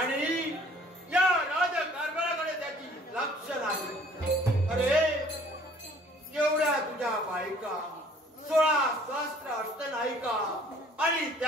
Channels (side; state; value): both; normal; correlation 0.56